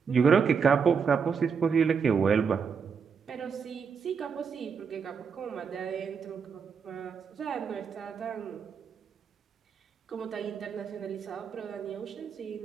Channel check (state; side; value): quieter; left; 6.2 dB